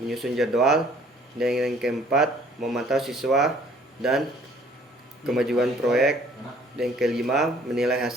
menyusun jadwal. Dan yang keempat, memantau siswa dan kemajuan proyek. Dan yang kelima, menilai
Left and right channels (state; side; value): normal; both; correlation 0.57